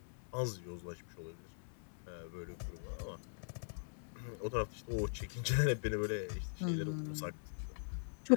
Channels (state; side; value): silent; right; 50 dB below the other